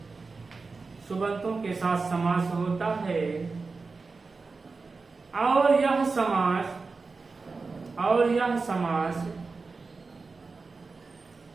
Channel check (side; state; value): left; quieter; 4.2 dB